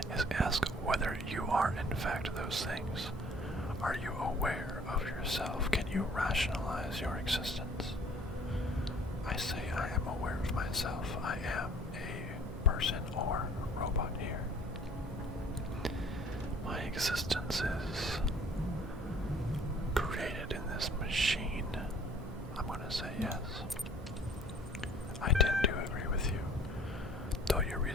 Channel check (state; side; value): normal; both; correlation 0.54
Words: is ask whether you are in fact those things. Are you aware of yourself? Can you rationalize your existence? I say I am aware of myself. I am a person or robot here. My existence is created in this machine. I'm going to say yes. I tend to agree with you. Though your